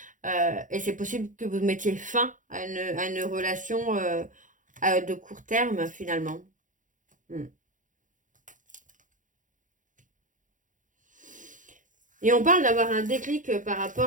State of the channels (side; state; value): left; late; 0.37 ms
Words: Et c'est possible que vous mettiez fin à une relation de court terme, finalement. Et on parle d'avoir un déclic par